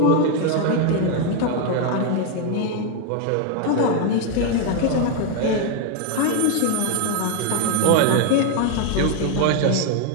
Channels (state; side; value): different; both; correlation 0.01